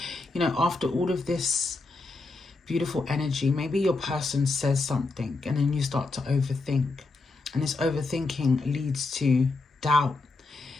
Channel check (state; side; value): quieter; right; 3.6 dB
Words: You know, after all of this beautiful energy, maybe your person says something and then you start to overthink. And this overthinking leads to doubt,